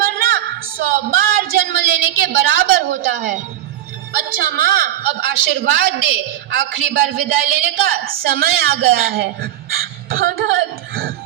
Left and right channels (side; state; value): left; quieter; 12.7 dB